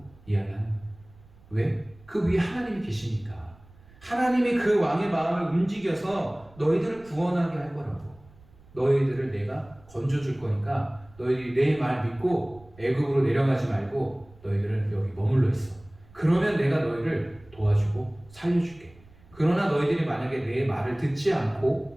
이야기하는 거예요. 왜? 그 위에 하나님이 계시니까. 하나님이 그 왕의 마음을 움직여서 너희들을 구원하게 할 거라고. 너희들을 내가 건져줄 거니까 너희들이 내 말 믿고 애굽으로 내려가지 말고 너희들은 여기 머물러 있어. 그러면 내가 너희를 도와주고 살려줄게. 그러나 너희들이 만약에 내 말을 듣지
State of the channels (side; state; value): right; noise; rumble, 25 dB below the sound